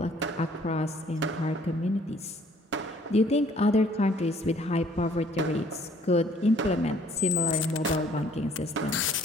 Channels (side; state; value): both; normal; correlation 0.59